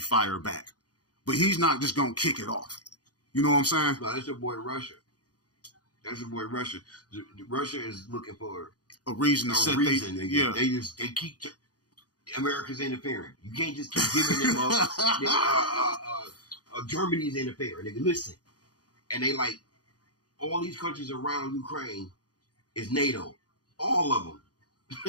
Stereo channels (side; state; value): right; late; 0.68 ms